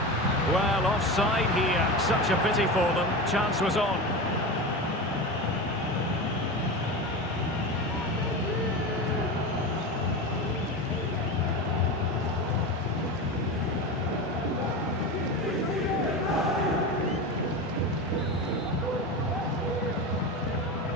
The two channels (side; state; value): both; normal; correlation 0.24